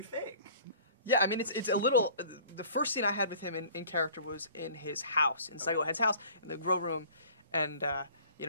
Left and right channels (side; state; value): both; inverted; correlation -0.49